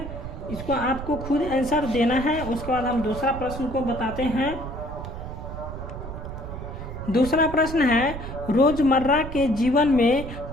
इसको आपको खुद आंसर देना है। उसके बाद हम दूसरा प्रश्न को बताते हैं। दूसरा प्रश्न है, रोजमर्रा के जीवन में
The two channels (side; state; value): right; noise; rumble, 9 dB below the sound